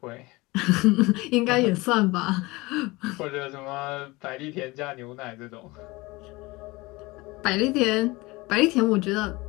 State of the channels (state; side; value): quieter; right; 22.4 dB